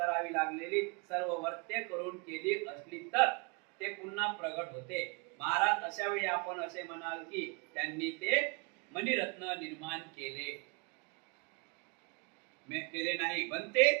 लागलेली सर्व वर्त्य करून केली असली तर ते पुन्हा प्रगट होते. महाराज अशा वेळी आपण असे म्हणाल की त्यांनी ते मणिरत्न निर्माण केले नाही बनते.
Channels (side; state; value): left; quieter; 31.3 dB